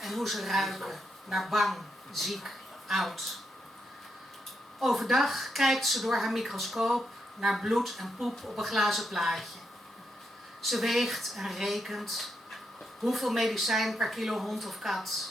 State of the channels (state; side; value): normal; both; correlation 0.82